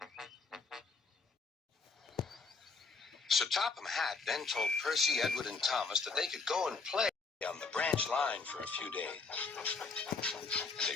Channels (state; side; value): quieter; right; 4.3 dB